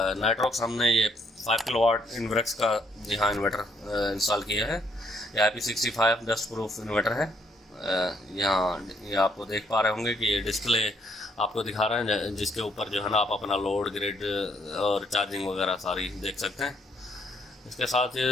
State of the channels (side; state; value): both; normal; correlation 0.70